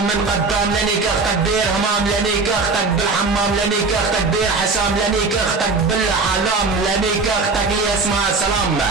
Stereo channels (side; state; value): left; quieter; 4.0 dB